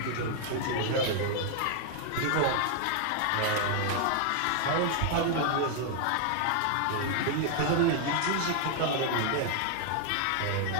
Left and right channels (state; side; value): different; both; correlation 0.00